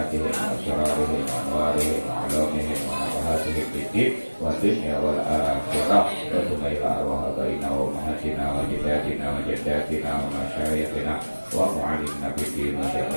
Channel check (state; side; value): inverted; both; correlation -1.00